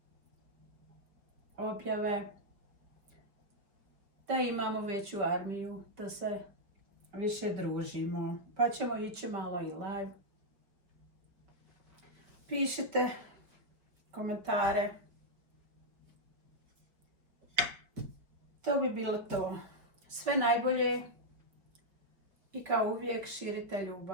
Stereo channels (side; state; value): left; late; 5.2 ms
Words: objave, da imamo veću armiju, da se više družimo. Pa ćemo ići malo i live. Pišite komentare. To bi bilo to. Sve najbolje i kao uvijek širite